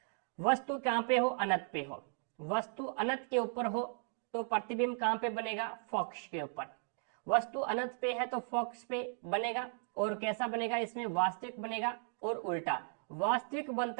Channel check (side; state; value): left; silent; 54 dB below the other